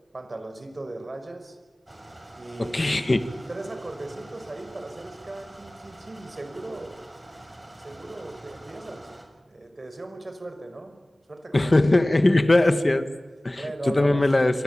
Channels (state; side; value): normal; both; correlation 0.98